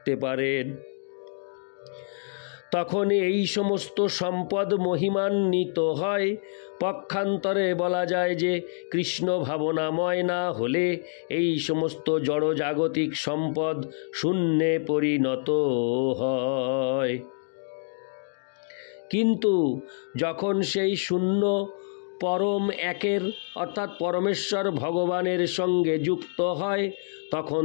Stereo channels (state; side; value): silent; right; digital silence